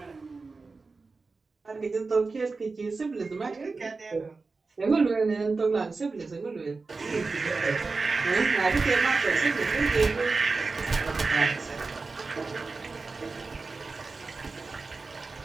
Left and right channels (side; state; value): left; quieter; 4.0 dB